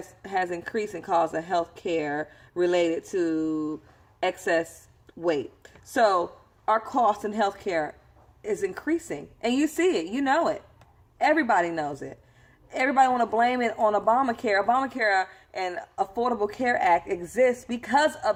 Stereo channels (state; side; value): identical; both; correlation 1.00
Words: increased in cause of health care related to excess weight. So our cost in health care is increasing, and you see it, it. Everybody knows it. Everybody want to blame it on Obamacare. Obamacare and Affordable Care Act exists because